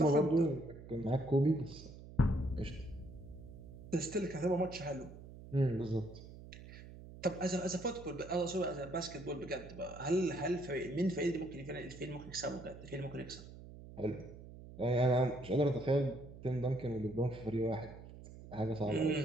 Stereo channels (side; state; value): right; noise; hum, 15 dB below the sound